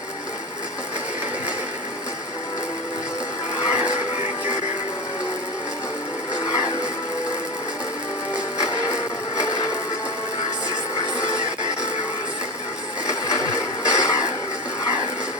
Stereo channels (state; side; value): normal; both; correlation 0.21